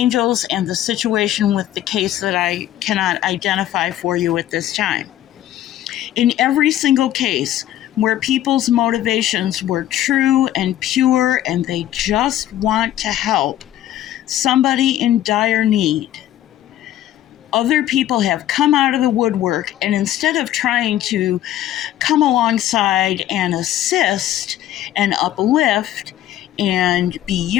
and the situation with the case that I cannot identify for you at this time. In every single case where people's motivations were true and pure and they just want to help somebody in dire need, other people have come out of the woodwork, and instead of trying to come alongside and assist and uplift and be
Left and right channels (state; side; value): quieter; right; 12.7 dB